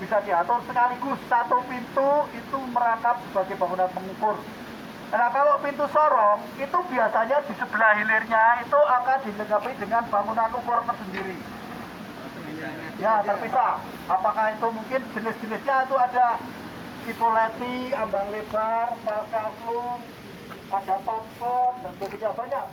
bisa diatur sekaligus. Satu pintu itu merangkap sebagai bangunan pengukur. Nah kalau pintu sorong itu biasanya di sebelah hilirnya itu akan dilengkapi dengan bangunan ukur tersendiri. Ya terpisah. Apakah itu mungkin jenis-jenisnya itu ada tipoleti, ambang lebar, palkaflung, ada pampon dan sebagainya,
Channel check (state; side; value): identical; both; correlation 1.00